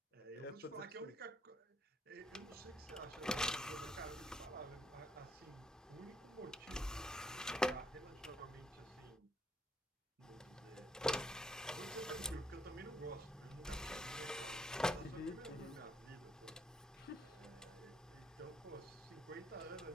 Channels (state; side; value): normal; both; correlation 0.70